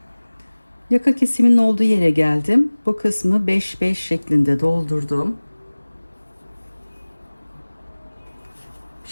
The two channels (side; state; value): both; inverted; correlation -1.00